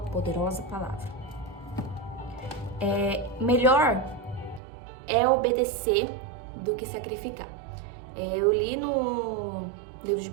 palavra. Melhor é obedecer do que sacrificar. Eu li no livro de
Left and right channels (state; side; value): drops out; left; at 4.6 s